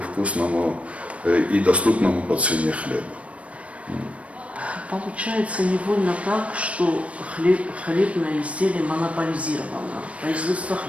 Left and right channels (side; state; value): left; late; 0.064 ms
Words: вкусному и доступному по цене хлеба. Получается невольно так, что хлебное изделие монополизировано, производство